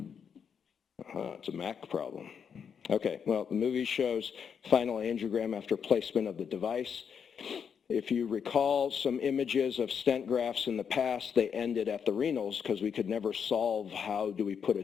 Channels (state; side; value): quieter; right; 7.1 dB